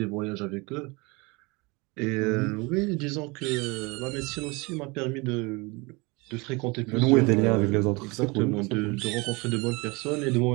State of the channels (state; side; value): quieter; left; 26.5 dB